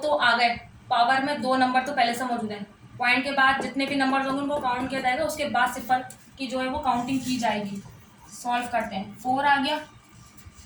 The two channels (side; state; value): both; identical; correlation 1.00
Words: तो आ गए, पावर में 2 नंबर तो पहले से मौजूद है। पॉइंट के बाद जितने भी नंबर होंगे उनको काउंट किया जाएगा, उसके बाद सिफर की जो है वो काउंटिंग की जाएगी। सॉल्व करते हैं, 4 आ गया,